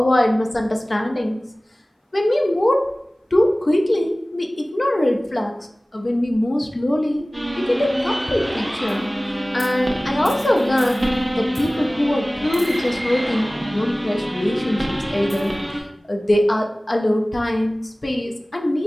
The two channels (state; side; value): normal; both; correlation 0.98